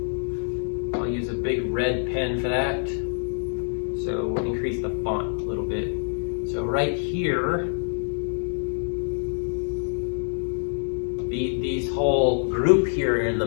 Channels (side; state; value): right; silent; digital silence